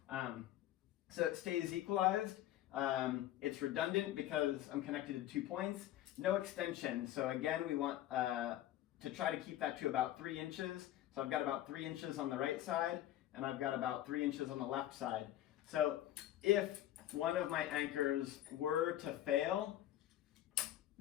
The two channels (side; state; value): right; quieter; 13.2 dB